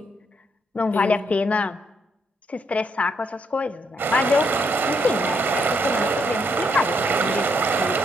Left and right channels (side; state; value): both; normal; correlation 0.75